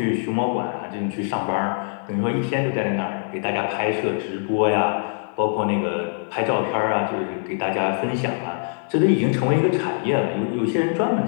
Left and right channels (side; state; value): right; silent; digital silence